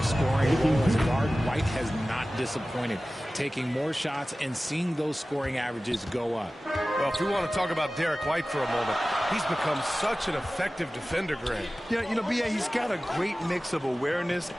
scoring role as guard, White has not disappointed, taking more shots and seeing those scoring averages go up. Well, if we want to talk about Derek White for a moment, he's become such an effective defender, Grant. Yeah, you know, BA, he's got a great mix of awareness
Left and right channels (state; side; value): normal; both; correlation 0.96